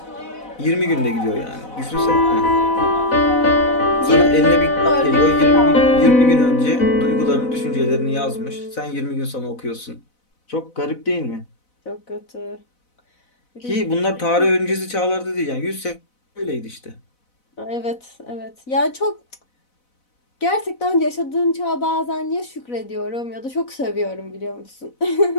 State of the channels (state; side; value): late; right; 4.0 ms